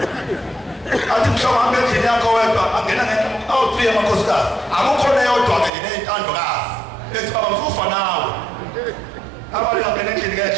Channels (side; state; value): left; drops out; at 5.7 s